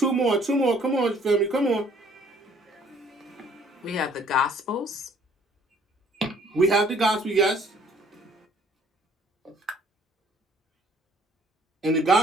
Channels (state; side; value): normal; both; correlation 0.59